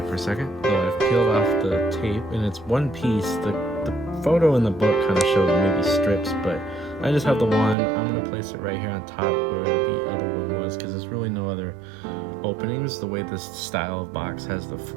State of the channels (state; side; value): drops out; left; at 7.8 s